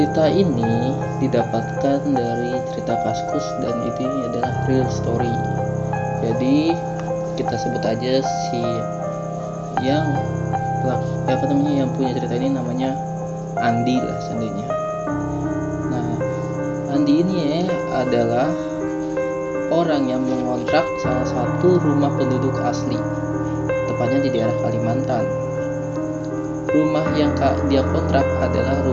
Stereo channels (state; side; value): identical; both; correlation 1.00